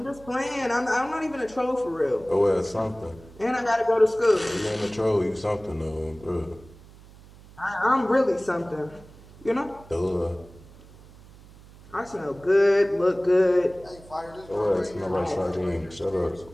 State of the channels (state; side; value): noise; right; hum, 22 dB below the sound